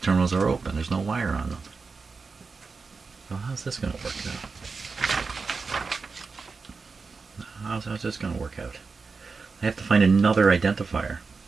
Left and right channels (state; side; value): quieter; left; 4.6 dB